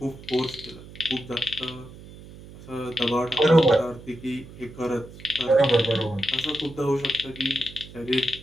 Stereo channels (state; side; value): noise; right; hum, 17 dB below the sound